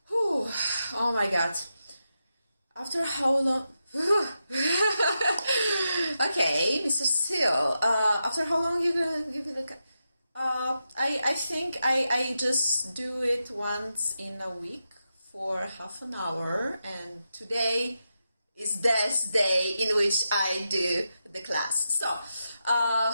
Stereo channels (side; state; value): both; inverted; correlation -0.88